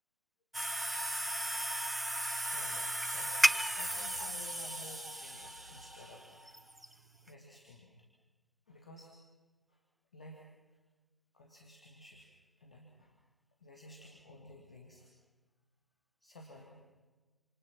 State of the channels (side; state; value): both; normal; correlation 0.88